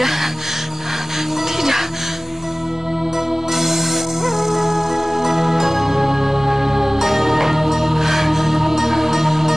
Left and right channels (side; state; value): both; normal; correlation 0.98